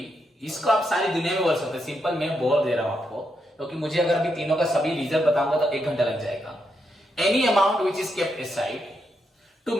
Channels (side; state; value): both; normal; correlation 0.81